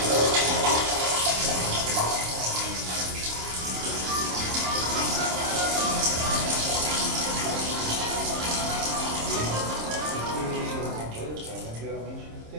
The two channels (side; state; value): left; late; 26 ms